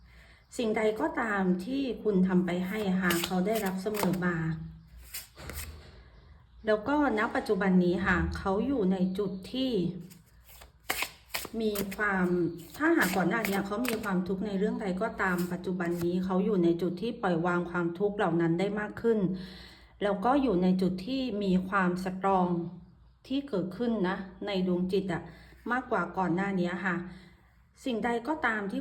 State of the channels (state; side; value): identical; both; correlation 1.00